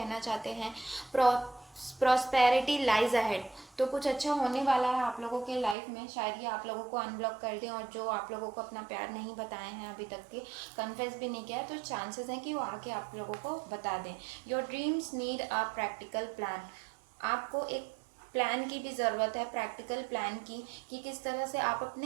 चाहते हैं प्रॉस्पेरिटी लाइज अहेड। तो कुछ अच्छा होने वाला है आप लोगों के लाइफ में, शायद ये आप लोगों को अनब्लॉक कर दें, और जो आप लोगों को अपना प्यार नहीं बताए हैं अभी तक के, कन्फेस भी नहीं किया है, तो चांसेस हैं कि वो आके आप लोगों को बता दें। Your dreams need a practical plan. आपको एक प्लान की भी ज़रूरत है, प्रैक्टिकल प्लान की, कि किस तरह से आप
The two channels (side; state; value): left; drops out; at 5.8 s